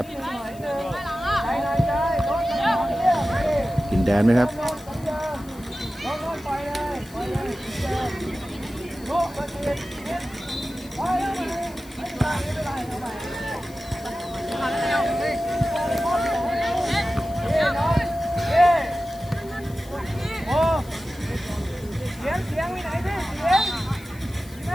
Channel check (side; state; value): left; noise; hiss, 22 dB below the sound